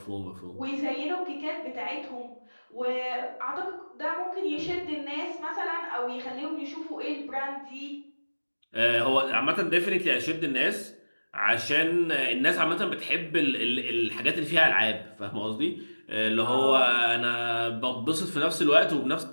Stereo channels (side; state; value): both; inverted; correlation -1.00